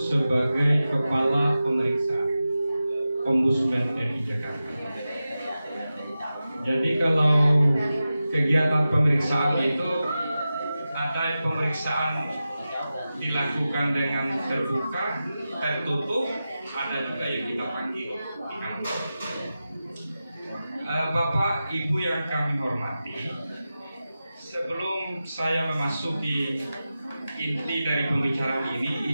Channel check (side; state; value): both; inverted; correlation -0.93